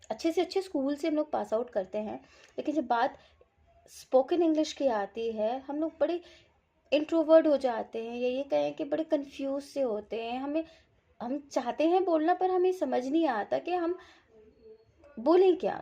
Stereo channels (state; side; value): identical; both; correlation 1.00